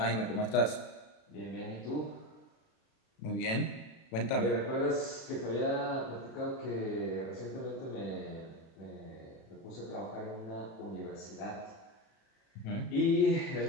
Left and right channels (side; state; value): right; late; 36 ms